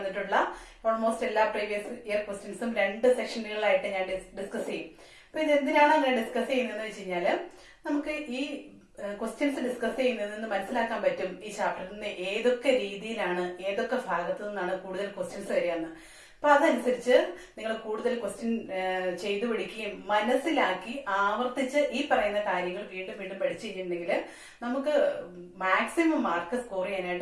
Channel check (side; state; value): both; identical; correlation 1.00